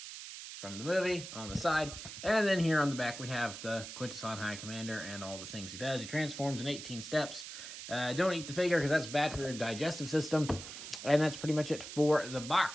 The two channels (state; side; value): noise; right; hiss, 10 dB below the sound